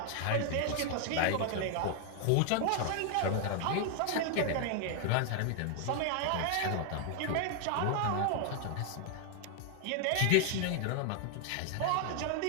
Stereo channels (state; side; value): different; both; correlation 0.00